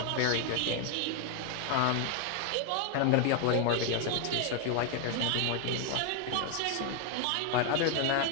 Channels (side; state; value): both; different; correlation 0.00